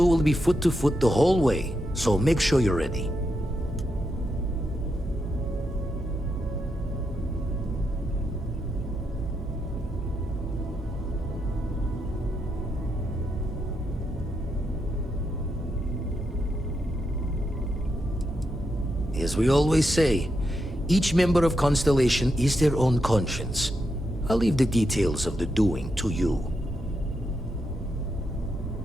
will be foot to foot the whole way, so make sure you're ready. As we always say, each member of Constellation is their own conscience. I'll leave the details of the doing to you.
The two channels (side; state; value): both; normal; correlation 0.83